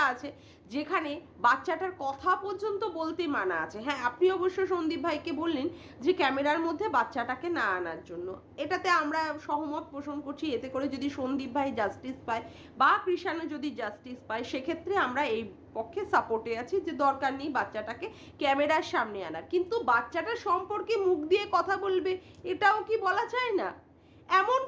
আছে যেখানে বাচ্চাটার কথা পর্যন্ত বলতে মানা আছে। হ্যাঁ, আপনি অবশ্য সন্দীপ ভাইকে বললেন যে ক্যামেরার মধ্যে বাচ্চাটাকে না আনার জন্য, এটাতে আমরা সহমত পোষণ করছি। এতে করে যদি সন্দীপ ভাই জাস্টিস পায় বা কৃষাণু যদি জাস্টিস পায়, সেক্ষেত্রে আমরা এই পক্ষে সাপোর্টে আছি যে দরকার নেই বাচ্চাটাকে ক্যামেরার সামনে আনার। কিন্তু বাচ্চাটার সম্পর্কে মুখ দিয়ে কথা বলবে, এটাও কি বলা যায় না? এমন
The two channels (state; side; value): identical; both; correlation 1.00